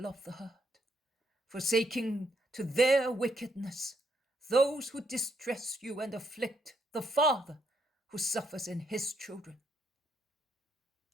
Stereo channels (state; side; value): normal; both; correlation 0.75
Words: of the herd, forsaking to their wickedness those who distress you and afflict the father who suffers in his children.